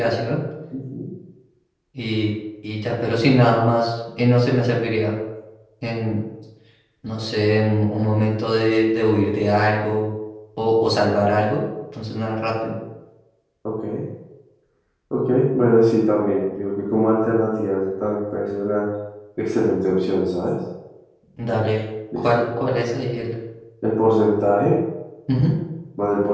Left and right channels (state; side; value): identical; both; correlation 1.00